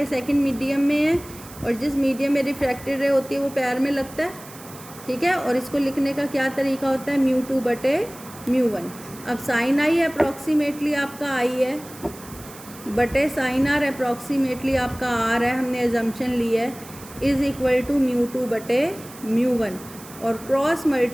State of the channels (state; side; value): noise; right; hiss, 18 dB below the sound